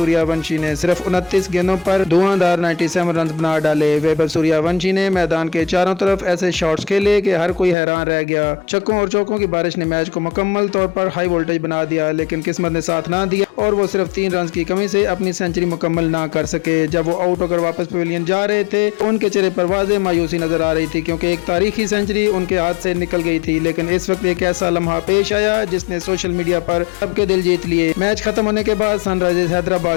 ونشی نے صرف 29 گیندوں پر دھواندار 97 رنز بنا ڈالے۔ ویبھو سوریہ ونشی نے میدان کے چاروں طرف ایسے شاٹس کھیلے کہ ہر کوئی حیران رہ گیا۔ چھکوں اور چوکوں کی بارش نے میچ کو مکمل طور پر ہائی وولٹیج بنا دیا، لیکن قسمت نے ساتھ نہ دیا اور وہ صرف 3 رنز کی کمی سے اپنی سینچری مکمل نہ کر سکے۔ جب وہ آؤٹ ہو کر واپس پویلین جا رہے تھے ان کے چہرے پر واضح مایوسی نظر آ رہی تھی، کیونکہ ایک تاریخی سینچری ان کے ہاتھ سے نکل گئی تھی۔ لیکن اس وقت ایک ایسا لمحہ پیش آیا جس نے سوشل میڈیا پر سب کے دل جیت لیے۔ میچ ختم ہونے کے بعد سن رائزرز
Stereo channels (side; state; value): right; drops out; at 7.8 s